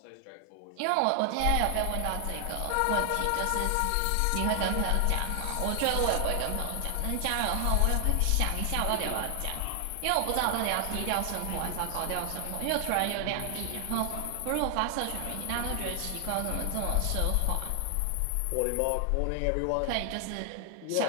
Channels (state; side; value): different; both; correlation 0.00